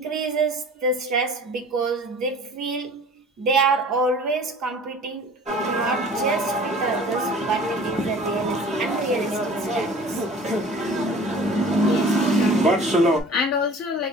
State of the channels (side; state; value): both; normal; correlation 0.45